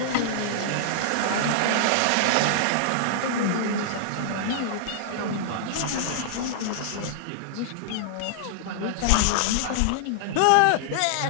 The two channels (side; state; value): both; different; correlation -0.01